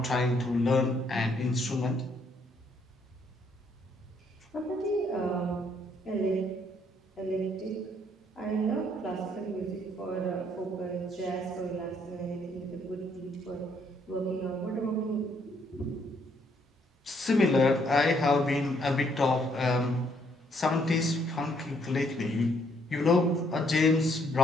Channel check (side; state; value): both; normal; correlation 0.69